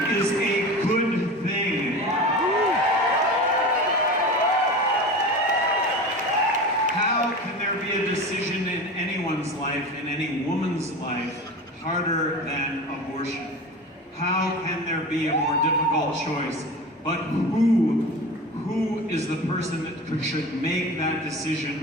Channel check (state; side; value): normal; both; correlation 0.31